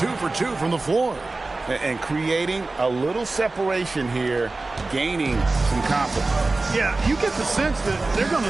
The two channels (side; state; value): left; quieter; 3.3 dB